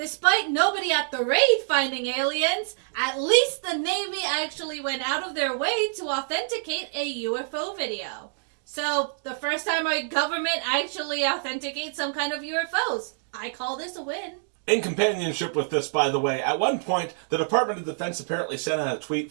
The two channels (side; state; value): left; silent; digital silence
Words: Despite nobody at the raid finding aliens, at least the Navy actually went out of their way to authenticate a UFO video. So, the first time our government actually authenticates some kind of UFOs. I call this a win. In companionship with this, by the way, at one point, the Department of Defense apparently sent out a